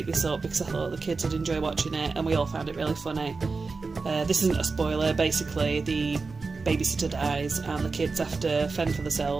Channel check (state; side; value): quieter; left; 4.2 dB